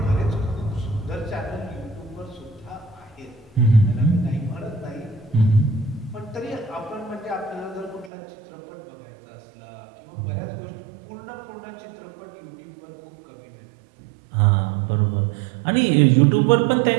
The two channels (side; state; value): left; drops out; at 8.1 s